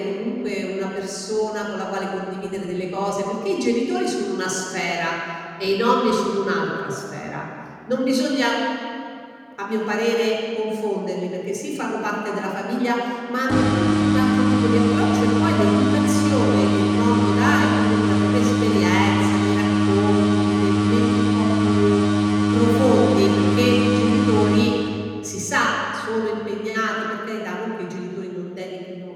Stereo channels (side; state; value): both; identical; correlation 1.00